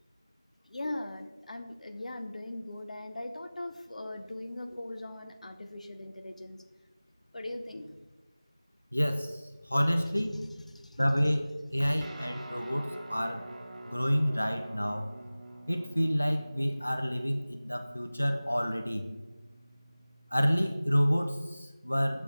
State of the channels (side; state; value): both; inverted; correlation -0.99